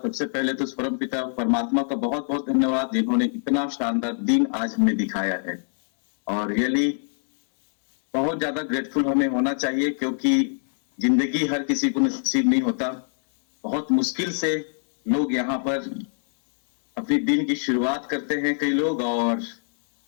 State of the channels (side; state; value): right; silent; digital silence